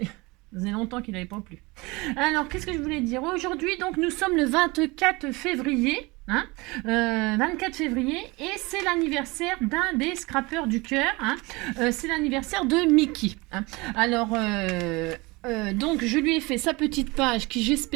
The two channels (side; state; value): left; quieter; 24.3 dB